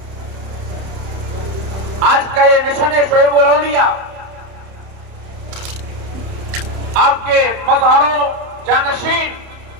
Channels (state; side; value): late; left; 31 ms